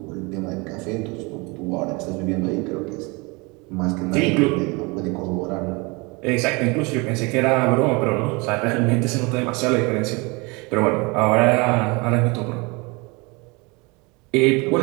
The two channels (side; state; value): left; quieter; 27.4 dB